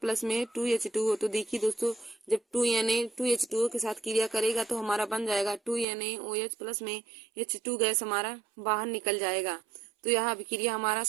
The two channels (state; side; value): drops out; left; at 5.9 s